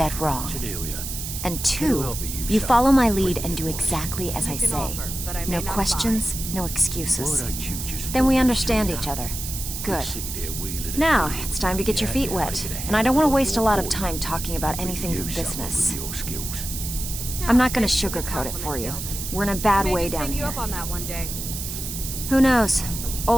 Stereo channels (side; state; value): right; noise; hiss, 6 dB below the sound